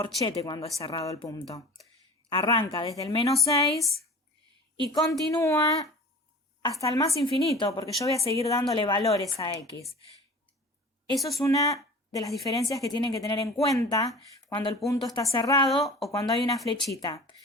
cuando es cerrado el punto. Arranca desde el menos 6 y continúa hasta el más infinito, porque yo voy a seguir dándole valores a x. Eso es una de las diferencias que tienen que tener en cuenta cuando el punto está cerrado o cuando hay una flechita.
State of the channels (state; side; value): normal; both; correlation 0.39